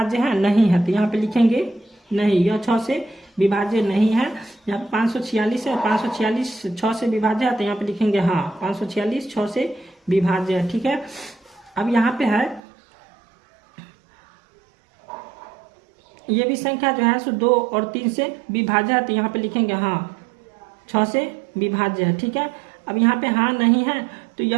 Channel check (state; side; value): drops out; left; at 12.6 s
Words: है नहीं है, तो यहाँ पे लिखेंगे नहीं, यह 6 से विभाज्य नहीं है। यहाँ पे 546 है, 546 6 से विभाज्य है, तो यहाँ पे लिखेंगे हाँ 546 6 से विभाज्य है, ठीक है। अब यहाँ पे है ये भी संख्या जो है सो 2 और 3 से विभाज्य है, तो यहाँ पे लिखेंगे हाँ 6 से विभाज्य है, ठीक है। अब यहाँ पे हाँ नहीं है, तो